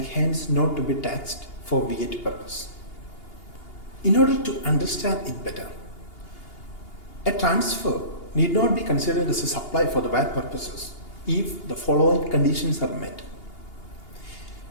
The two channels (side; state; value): right; late; 2.8 ms